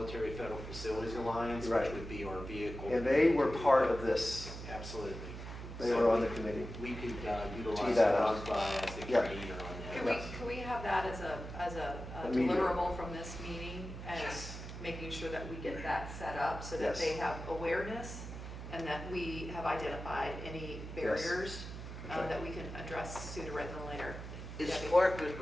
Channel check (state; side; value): noise; right; hum, 9 dB below the sound